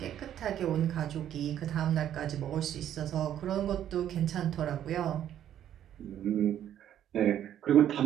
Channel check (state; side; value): quieter; left; 10.8 dB